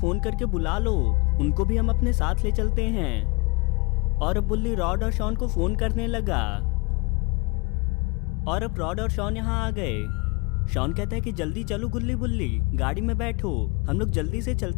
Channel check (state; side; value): quieter; right; 27.0 dB